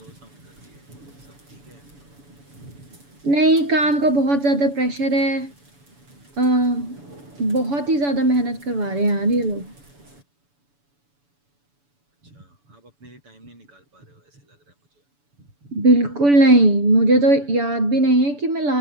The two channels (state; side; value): late; left; 7.0 ms